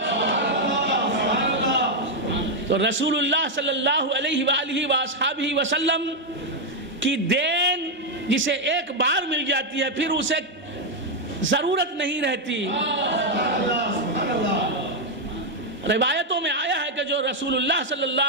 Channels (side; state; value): both; normal; correlation 0.01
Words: تو رسول اللہ صلی اللہ علیہ وآلہ وآصحابہ وسلم کی دین جسے ایک بار مل جاتی ہے پھر اسے ضرورت نہیں رہتی۔ روایتوں میں آیا ہے کہ جو رسول اللہ صلی